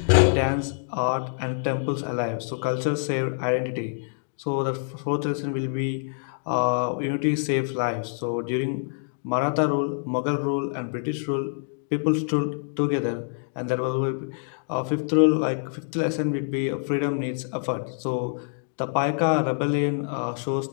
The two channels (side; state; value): right; silent; digital silence